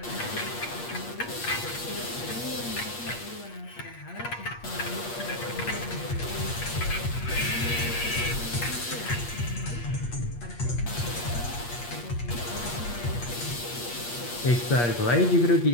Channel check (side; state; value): right; late; 8.5 ms